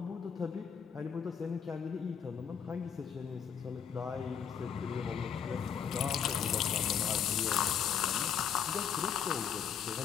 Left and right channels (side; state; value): right; quieter; 7.8 dB